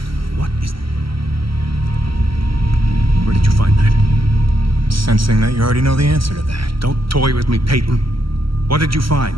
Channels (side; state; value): left; late; 0.74 ms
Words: What is... Where did you find that? I'm sensing that you already know the answer to that. Don't toy with me, Peyton. What did you find?